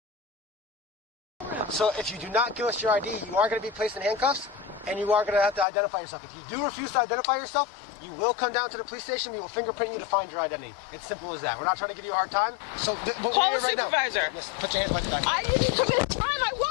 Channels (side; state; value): right; drops out; at 5.7 s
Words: So if you do not give us your ID, you are going to be placed in handcuffs, and you are going to have to identify yourself. If you do refuse to identify yourself, you will come down to the police station. We will fingerprint you to find your identity. It's simple as that. We're not trying to give you a hard time. So call the supervisor. Put your hands behind your back. I didn't commit a crime. I